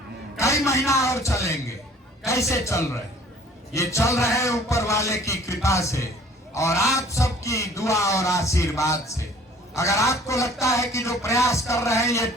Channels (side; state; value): both; normal; correlation 0.53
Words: कई महीना और चलेंगे। कैसे चल रहे? ये चल रहे हैं ऊपर वाले की कृपा से और आप सबकी दुआ और आशीर्वाद से। अगर आपको लगता है कि जो प्रयास कर रहे हैं ये